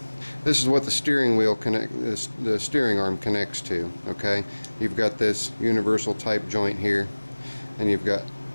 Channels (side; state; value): both; inverted; correlation -1.00